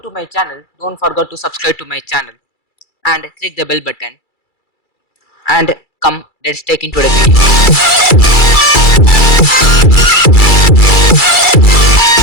to my channel, don't forget to subscribe to my channel and click the bell button. And come, let's take into the video.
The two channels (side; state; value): right; late; 2.3 ms